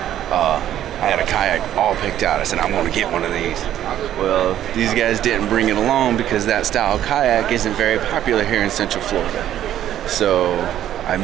I had a kayak all picked out. I said, I'm going to get one of these. Well, these guys didn't bring it along because that style kayak isn't very popular here in Central Florida. So I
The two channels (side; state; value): left; quieter; 11.6 dB